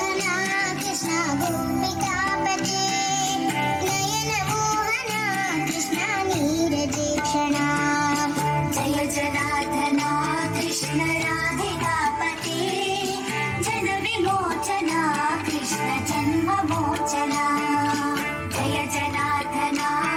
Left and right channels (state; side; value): identical; both; correlation 1.00